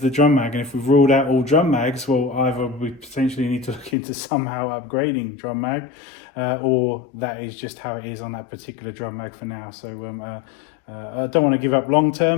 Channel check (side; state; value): right; drops out; at 4.0 s